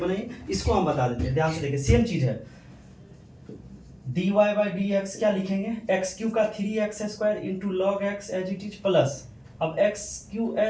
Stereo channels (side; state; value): both; identical; correlation 1.00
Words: इसको हम बता देते हैं। ध्यान से देखिए सेम चीज है, dy बाई डी एक्स क्या लिखेंगे, एक्स क्यू का 3x square into log x as it is plus अब x cube